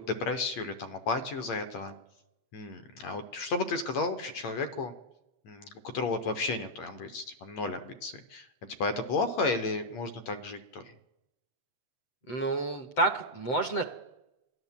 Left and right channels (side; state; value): right; late; 7.9 ms